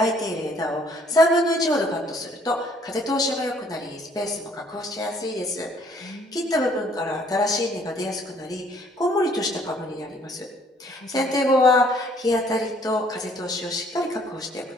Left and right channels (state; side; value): normal; both; correlation 0.62